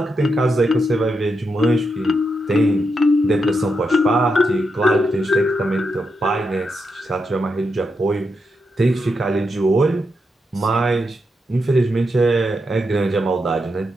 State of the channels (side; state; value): both; normal; correlation 0.84